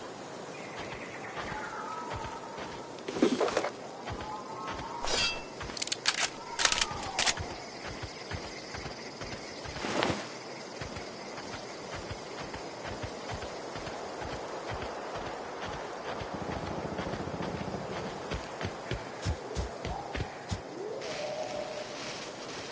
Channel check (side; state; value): both; identical; correlation 1.00